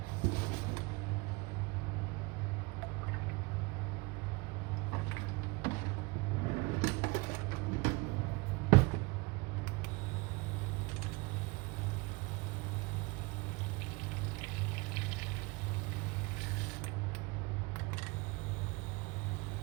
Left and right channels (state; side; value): quieter; left; 25.2 dB